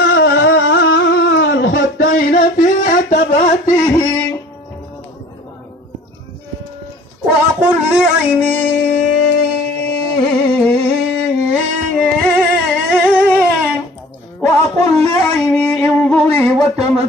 الخدين في عتباته وأقول لعيني وأقول لعيني انظري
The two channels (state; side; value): normal; both; correlation 0.48